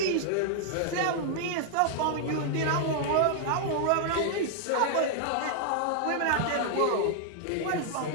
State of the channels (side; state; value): both; different; correlation -0.01